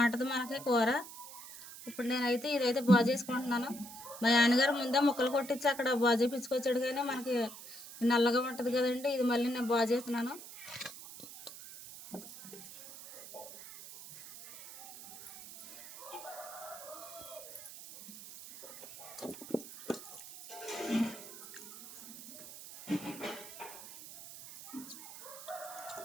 మనకి కూర. ఇప్పుడు నేనైతే ఇదైతే బాగు చేసుకుంటున్నాను. మా నాన్నగారు ముందే ముక్కలు కొట్టించి అక్కడ బాగు చేయించుకొచ్చాడు, కానీ మనకి నల్లగా ఉంటుంది కదండి. ఇది మళ్ళీ నేను బాగు చేస్తున్నాను.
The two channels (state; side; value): noise; right; hiss, 14 dB below the sound